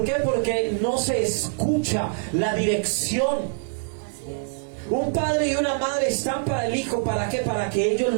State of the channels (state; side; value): silent; left; digital silence